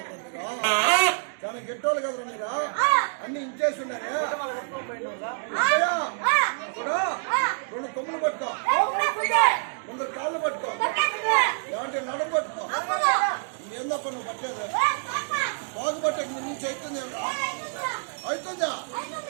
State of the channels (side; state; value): left; silent; digital silence